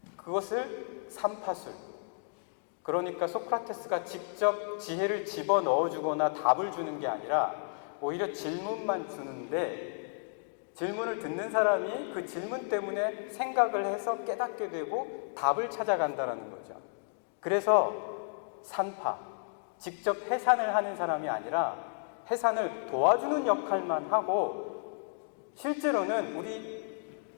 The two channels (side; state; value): right; silent; digital silence